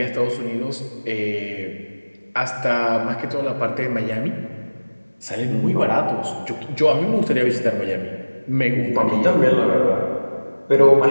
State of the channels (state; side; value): inverted; both; correlation -1.00